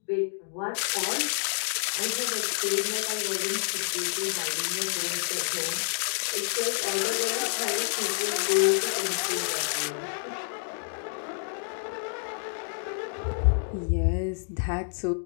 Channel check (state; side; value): silent; right; digital silence